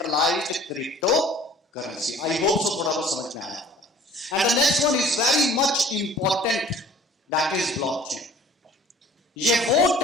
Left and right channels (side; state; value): both; normal; correlation 0.50